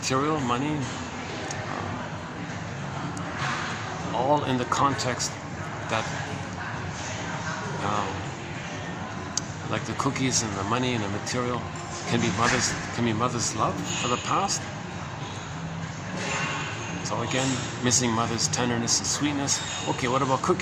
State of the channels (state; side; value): identical; both; correlation 1.00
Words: money, all in the context that like the cookies and the money and the material can be mother's love for the past. So again, missing mother's tenderness and sweetness. Okay, what about